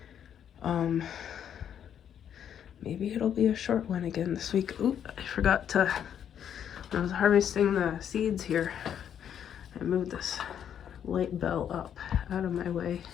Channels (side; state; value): right; quieter; 9.1 dB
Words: Maybe it'll be a short one again this week. Ooh, I forgot to, when I was harvesting the seeds here, I moved this light bell up out of my way.